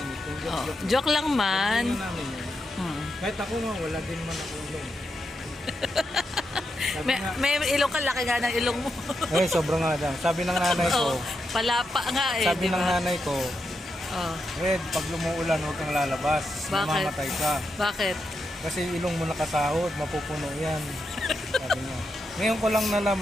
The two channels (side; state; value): both; normal; correlation 0.85